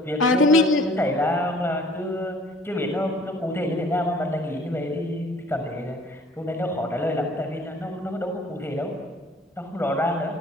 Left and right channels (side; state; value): both; normal; correlation 0.52